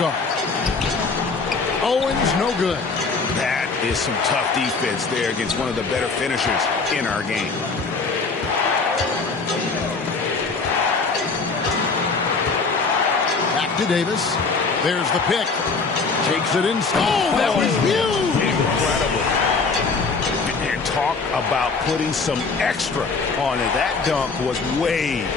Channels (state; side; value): quieter; right; 4.4 dB